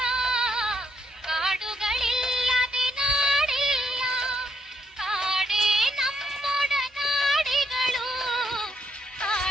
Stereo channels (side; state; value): both; normal; correlation 0.74